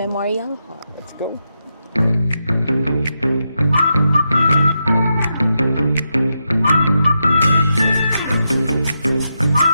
Hall. Let's go!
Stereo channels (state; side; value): inverted; both; correlation -0.85